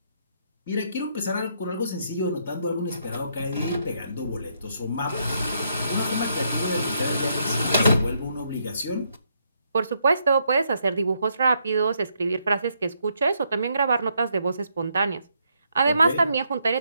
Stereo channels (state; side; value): inverted; both; correlation -0.75